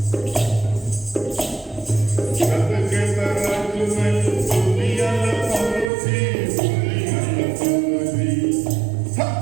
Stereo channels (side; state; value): left; drops out; at 5.9 s